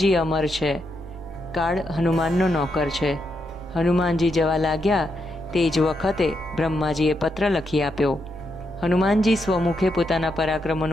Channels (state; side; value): noise; left; rumble, 28 dB below the sound